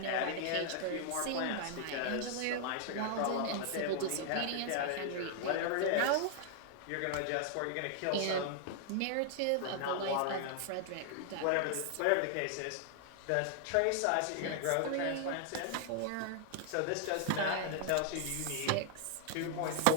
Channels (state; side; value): different; both; correlation 0.00